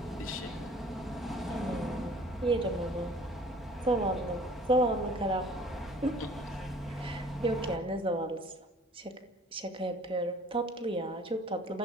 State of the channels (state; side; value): normal; both; correlation 0.52